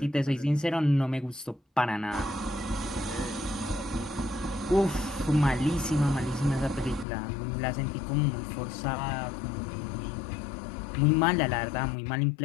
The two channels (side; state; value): right; drops out; at 7.1 s